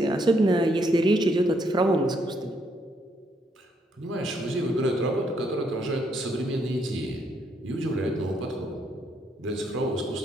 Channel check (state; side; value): normal; both; correlation 0.73